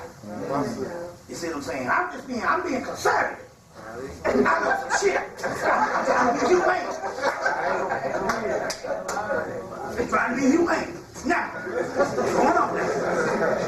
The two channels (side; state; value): both; identical; correlation 1.00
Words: it. You see what I'm saying? I'm being conservative. I know some shit. I'm trying to be humane. I'm trying to be humane. Now, what's going on